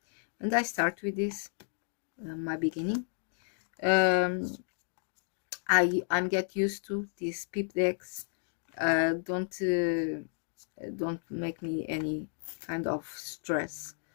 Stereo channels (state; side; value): silent; right; digital silence